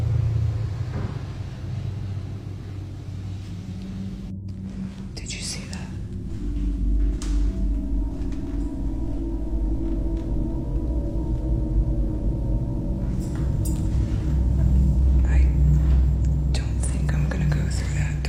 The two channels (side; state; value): both; identical; correlation 1.00